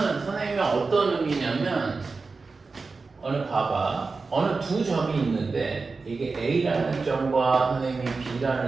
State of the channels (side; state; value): left; quieter; 4.2 dB